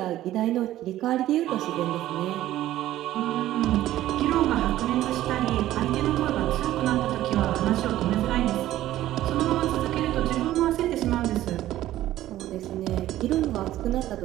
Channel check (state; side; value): quieter; left; 14.1 dB